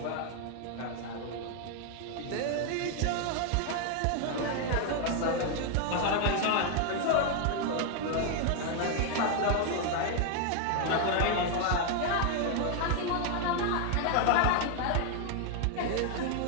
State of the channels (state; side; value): different; both; correlation 0.00